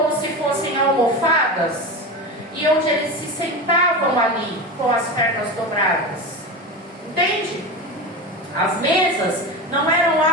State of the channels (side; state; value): both; normal; correlation 0.24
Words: se fossem almofadas, e onde eles se sentavam ali com as pernas dobradas. Entende? As mesas não eram